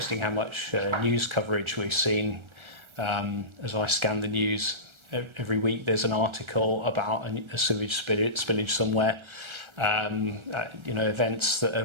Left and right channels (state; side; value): late; left; 1.3 ms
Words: how much news coverage we've seen as I scan the news. Every week there's an article about a sewage spillage somewhere. Events that